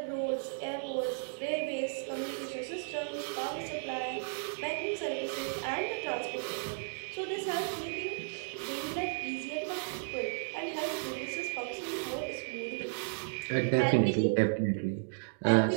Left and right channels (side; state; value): left; silent; digital silence